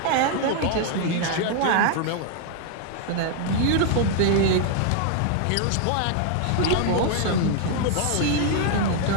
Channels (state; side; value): different; both; correlation 0.00